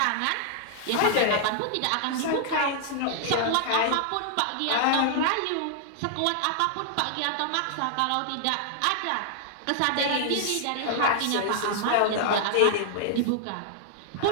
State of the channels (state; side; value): different; both; correlation -0.01